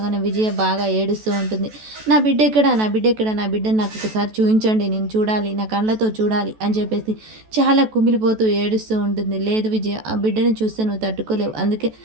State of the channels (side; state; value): left; late; 14 ms